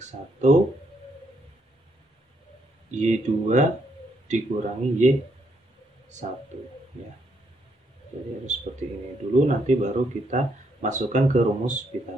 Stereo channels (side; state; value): both; normal; correlation 0.75